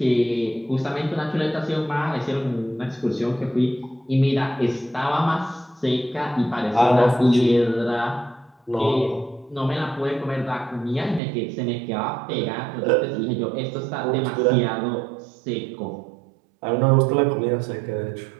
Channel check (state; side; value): drops out; left; at 11.2 s